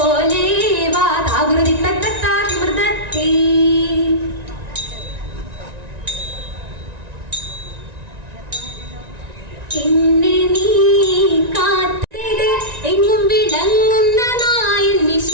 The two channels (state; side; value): late; left; 1.9 ms